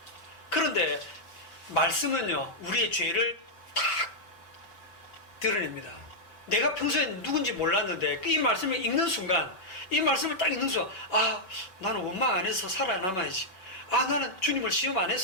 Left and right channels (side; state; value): right; late; 5.2 ms